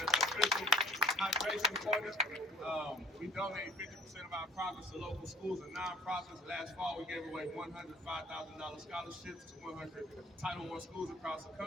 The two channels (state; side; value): normal; both; correlation 0.53